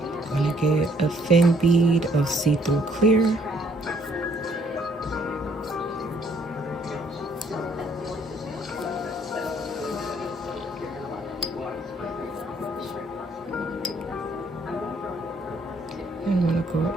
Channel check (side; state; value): both; normal; correlation 0.65